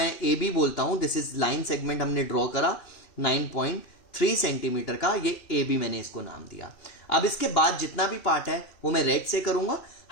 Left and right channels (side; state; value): right; late; 2.6 ms